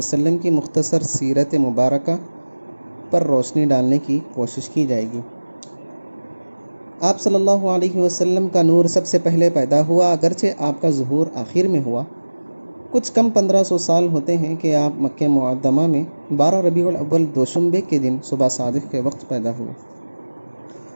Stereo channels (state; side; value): inverted; both; correlation -1.00